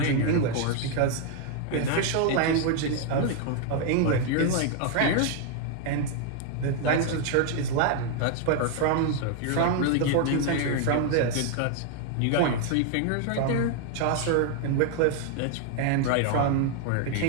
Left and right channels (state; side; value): different; both; correlation 0.00